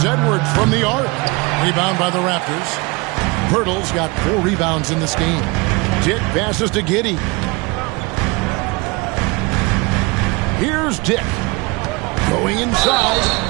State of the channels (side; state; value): left; quieter; 25.9 dB